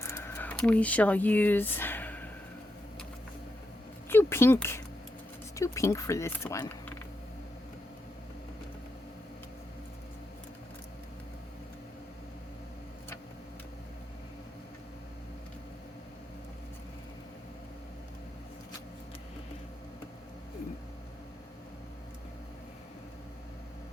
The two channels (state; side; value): normal; both; correlation 0.85